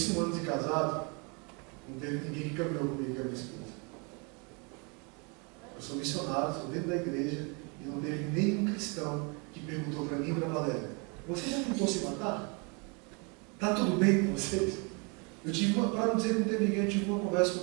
1 ano de casado, não teve ninguém que caminhou comigo, que é a minha esposa. Eu sou missionário, estou dentro da igreja, e não teve nenhum cristão que perguntou para mim e para a Valéria: você já tentou se matar? Está tudo bem com vocês? Eu tive para não dizer que não teve ninguém, eu tive uma conversa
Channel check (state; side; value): quieter; left; 32.7 dB